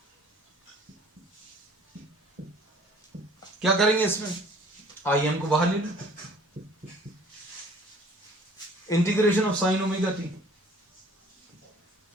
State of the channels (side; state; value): both; normal; correlation 0.53